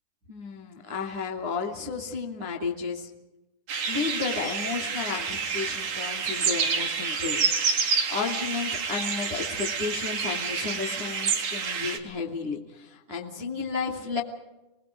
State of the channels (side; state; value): left; late; 9.9 ms